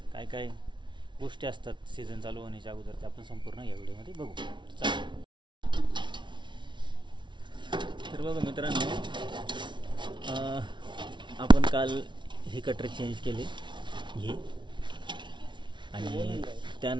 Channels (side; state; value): left; late; 0.23 ms